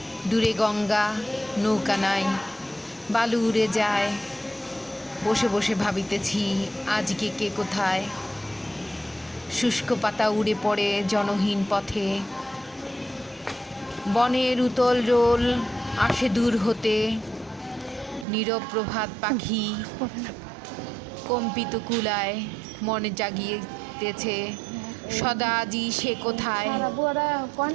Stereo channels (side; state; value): left; drops out; at 18.2 s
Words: দূরে গঙ্গা, নৌকা নাই, বালু উড়ে যায়। বসে বসে ভাবিতেছি আজকে কে কোথায়। শুষ্ক পাতা উড়ে পড়ে জনহীন পথে, বনের উতল রোল আসে দূর হতে। নীরব প্রভাত পাখি কম্পিত কুলায়, মনে জাগিয়েতেছে সদা আজি সে কোথায়।